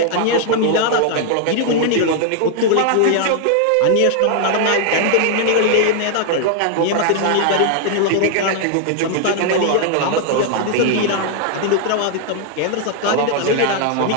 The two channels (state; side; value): different; both; correlation 0.00